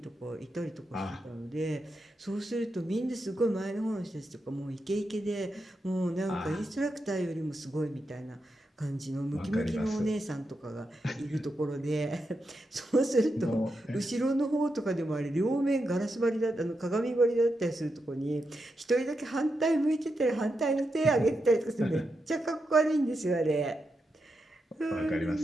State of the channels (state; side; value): normal; both; correlation 0.86